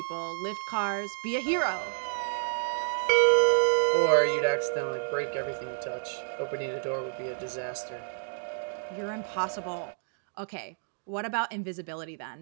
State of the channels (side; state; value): left; silent; digital silence